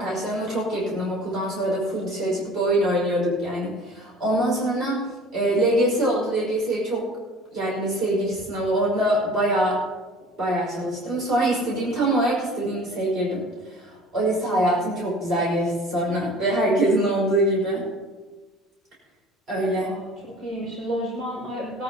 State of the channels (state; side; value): normal; both; correlation 0.45